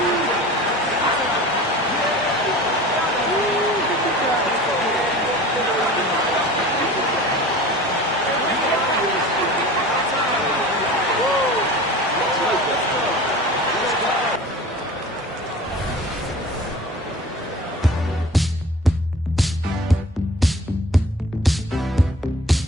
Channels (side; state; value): both; normal; correlation 0.40